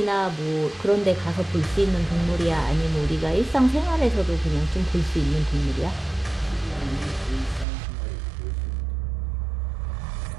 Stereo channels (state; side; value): drops out; left; at 7.7 s